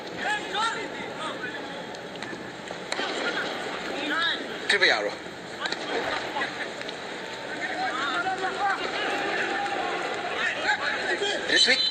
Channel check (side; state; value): both; identical; correlation 1.00